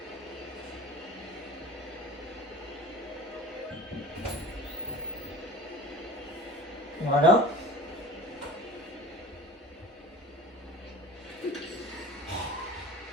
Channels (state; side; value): normal; both; correlation 0.40